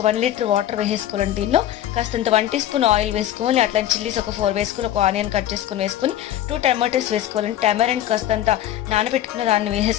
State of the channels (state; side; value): quieter; right; 12.1 dB